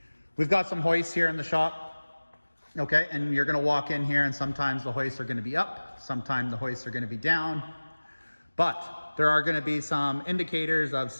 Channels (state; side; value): inverted; both; correlation -1.00